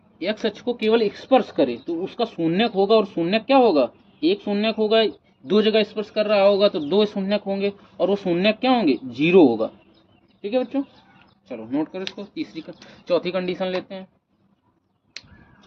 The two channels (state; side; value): identical; both; correlation 1.00